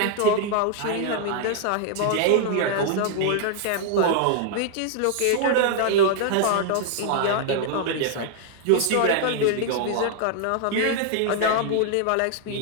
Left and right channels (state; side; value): different; both; correlation 0.00